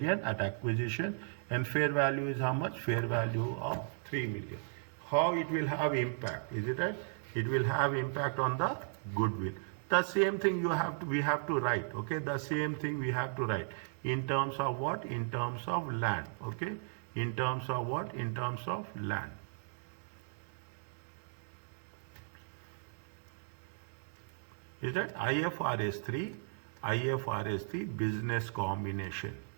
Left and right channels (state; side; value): silent; left; digital silence